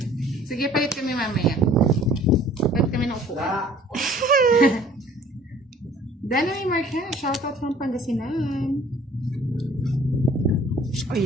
Sige, palit kami mamaya. Palit kami ng upuan. Danoy Marquez, shoutout from Pangasinan. O,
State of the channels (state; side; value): normal; both; correlation 0.53